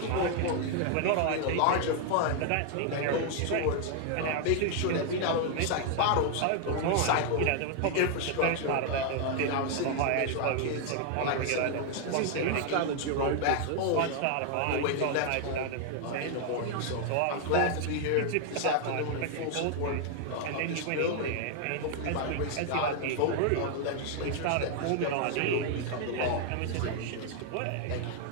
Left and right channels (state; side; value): different; both; correlation 0.00